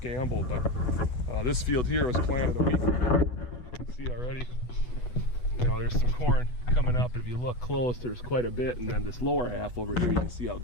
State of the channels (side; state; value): right; late; 8.1 ms